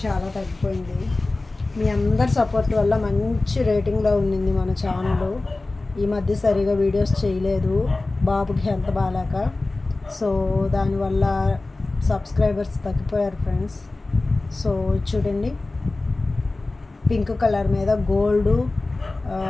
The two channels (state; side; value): quieter; right; 3.2 dB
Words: చాలా తగ్గిపోయింది. మీ అందరి సపోర్ట్ వల్ల మంచి రేటింగ్లో ఉండింది మన ఛానల్. ఈ మధ్య సరిగా వీడియోస్ చేయలేదు, బాబుకి హెల్త్ బాగాలేక. సో దానివల్ల సబ్స్క్రైబర్స్ తగ్గిపోయారు ఫ్రెండ్స్. సో చూడండి, పింక్ కలర్ మీద గోల్డ్